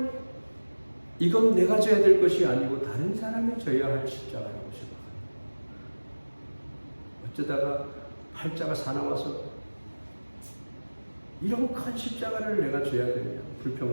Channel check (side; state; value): both; inverted; correlation -1.00